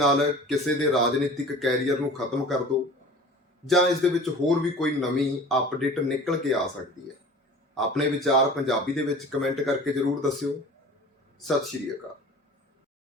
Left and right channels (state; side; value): normal; both; correlation 0.41